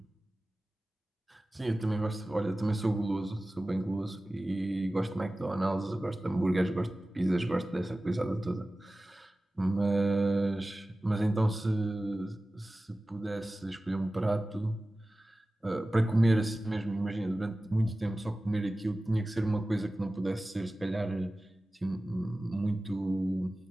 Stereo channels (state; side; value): normal; both; correlation 0.96